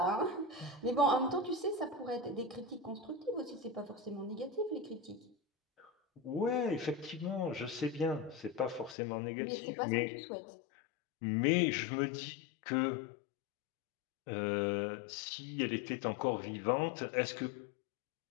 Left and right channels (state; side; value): drops out; right; at 9.0 s